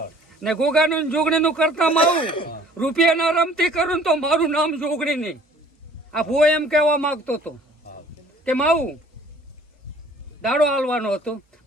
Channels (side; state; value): both; normal; correlation 0.53